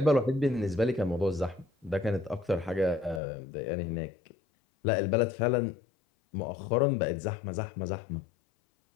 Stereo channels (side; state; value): right; drops out; at 3.2 s